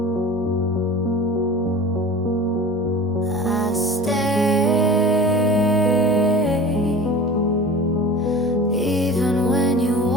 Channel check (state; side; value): normal; both; correlation 0.37